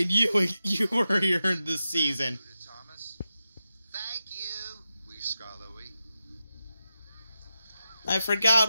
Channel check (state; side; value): inverted; both; correlation -0.91